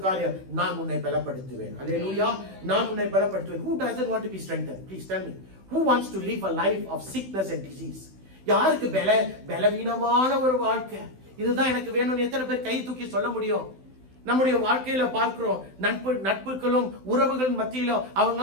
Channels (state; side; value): late; left; 16 ms